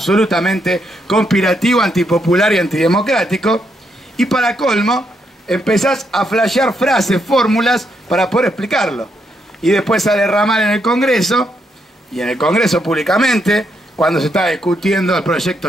conspirativo, antipopular y antidemocrático, y para colmo empezás a flashear frases, fórmulas para poder explicarlo, y después a derramar en el Congreso, y en el Congreso públicamente, cuando se está discutiendo el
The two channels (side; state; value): both; normal; correlation 0.78